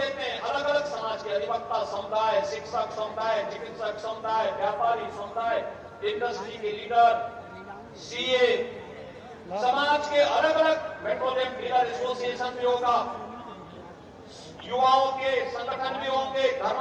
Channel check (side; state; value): both; identical; correlation 1.00